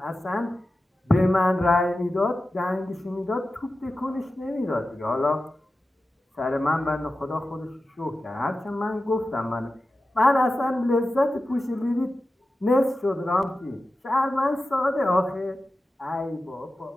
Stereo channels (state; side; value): normal; both; correlation 0.93